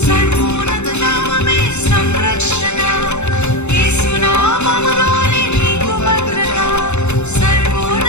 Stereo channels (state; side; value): late; right; 0.82 ms